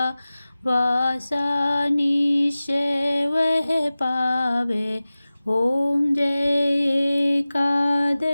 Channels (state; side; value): inverted; both; correlation -0.97